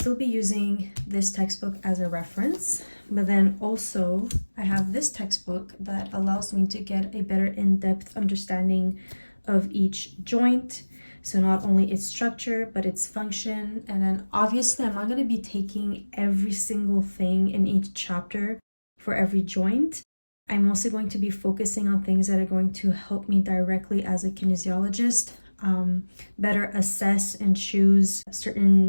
be using this textbook as a reference, but then also I have this textbook that allows me to get a better in-depth understanding of each joint. So not only its structure, but its function. And then obviously I'm not going to be taking every single thing in each chapter for every joint. I'm mostly going to be focusing on things that are going to help me directly as a kinesiologist better assess and choose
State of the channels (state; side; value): inverted; both; correlation -1.00